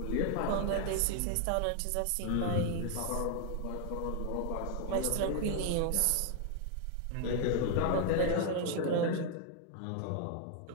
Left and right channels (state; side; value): different; both; correlation 0.00